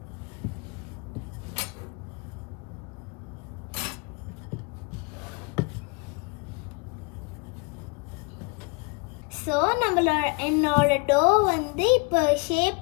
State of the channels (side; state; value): right; quieter; 32.2 dB